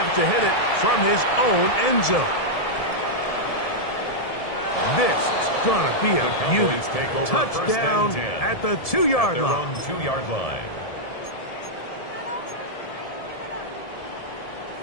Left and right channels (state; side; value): late; right; 1.7 ms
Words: to hit it from his own end zone. This is going to be a The beauty. Cowboys take over Touchdown first and 10 at the at 2-yard their line. own 2-yard line.